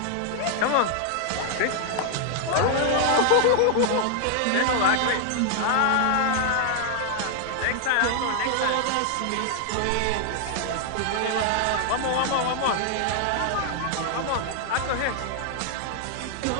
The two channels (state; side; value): different; both; correlation 0.00